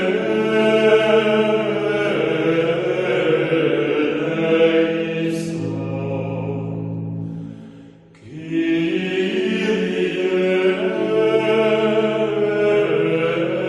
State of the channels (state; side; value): identical; both; correlation 1.00